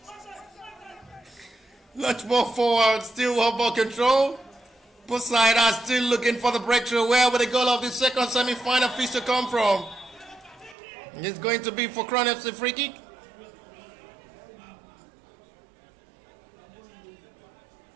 Much more forward, still one ball control. Both sides are still looking for the breakthrough. Where will the goal of the second semi-final feast to come from? It's going to be for Crown FC free kick.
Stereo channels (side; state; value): left; drops out; at 10.8 s